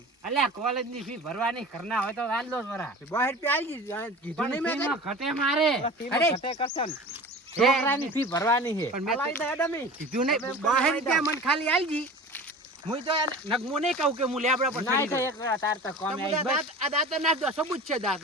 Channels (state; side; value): normal; both; correlation 0.37